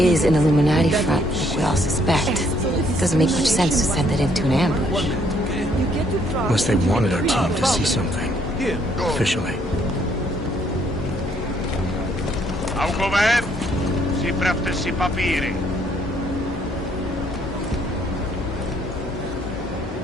an Illuminati front, like we all suspect, it doesn't make much sense to send it into an ambush. Unless they wanted our team to see something. Officially. Augové, připravte si papíry.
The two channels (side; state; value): both; normal; correlation 0.67